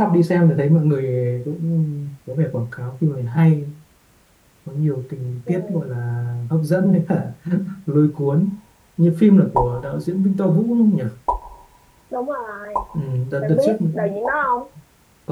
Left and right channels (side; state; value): both; identical; correlation 1.00